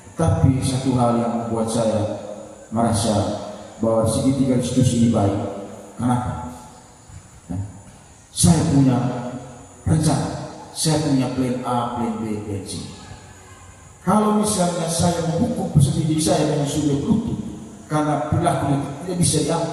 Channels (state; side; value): identical; both; correlation 1.00